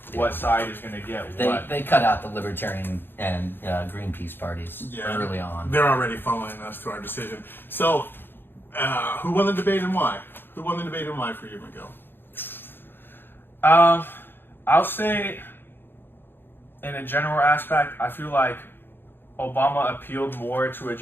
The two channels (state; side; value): late; right; 0.10 ms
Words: what side is going to get what. They cut out the Libertarian and Greenpeace parties early on. They're already following us to our decision. So, who won the debate and why? Who won the debate and why for you, Miguel? I'll say, in a general aspect, I feel like Obama appealed more to a